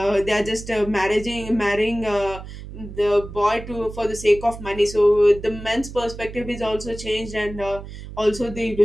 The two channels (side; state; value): right; noise; hum, 12 dB below the sound